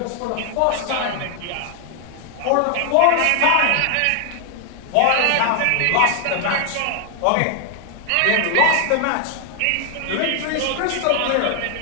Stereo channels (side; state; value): both; different; correlation 0.00